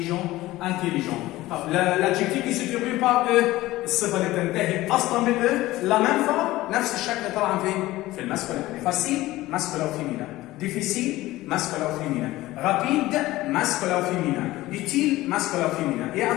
L'adjectif qui se termine par E الصفة اللي تنتهي أصلا بال E la même fois نفس الشكل طبعا في الماسكولين. facile masculin ou féminin, difficile masculin ou féminin, rapide masculin ou féminin, utile masculin ou féminin. Et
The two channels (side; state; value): right; quieter; 17.4 dB